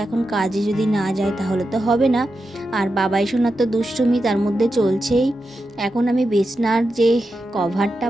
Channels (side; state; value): both; normal; correlation 0.89